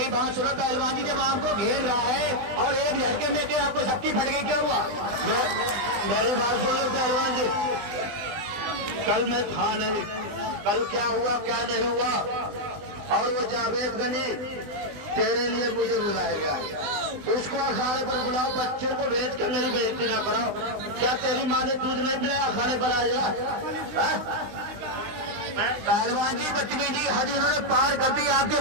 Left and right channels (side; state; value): left; late; 20 ms